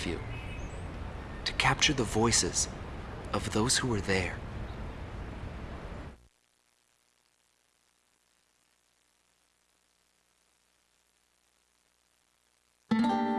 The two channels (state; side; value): identical; both; correlation 1.00